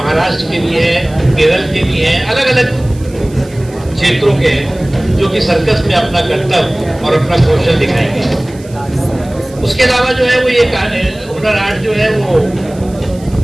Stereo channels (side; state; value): right; noise; hiss, 24 dB below the sound